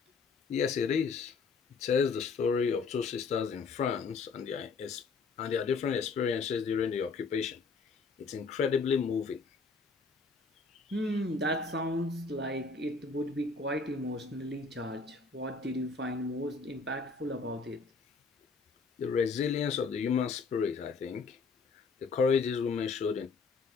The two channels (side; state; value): right; quieter; 4.6 dB